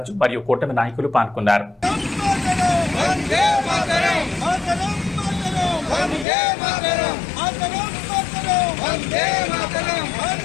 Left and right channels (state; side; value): drops out; right; at 6.2 s